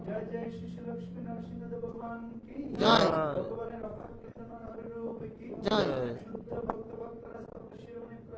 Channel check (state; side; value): identical; both; correlation 1.00